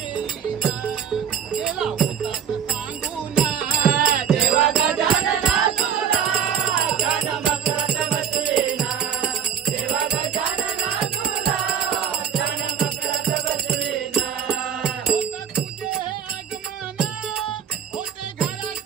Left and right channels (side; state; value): left; quieter; 8.2 dB